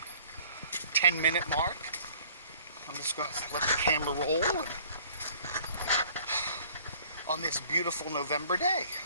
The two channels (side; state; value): both; inverted; correlation -0.54